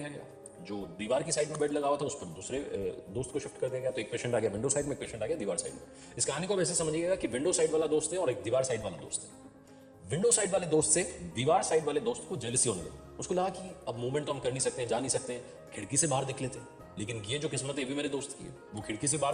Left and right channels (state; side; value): identical; both; correlation 1.00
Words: गया। जो दीवार की साइड में बेड लगा हुआ था, उस पर दूसरे दोस्त को शिफ्ट कर दिया गया। तो एक पेशेंट आ गया विंडो साइड में, एक पेशेंट आ गया दीवार साइड में। इस कहानी को वैसे समझिएगा कि विंडो साइड वाला दोस्त है और एक दीवार साइड वाला दोस्त है। विंडो साइड वाले दोस्त से दीवार साइड वाले दोस्त को जेलसी होने लगी। उसको लगा कि अब मूवमेंट तो हम कर नहीं सकते, जा नहीं सकते, खिड़की से बाहर देख लेते हैं। लेकिन ये जो किस्मत है ये भी मेरे दोस्त की है, वो खिड़की से बाहर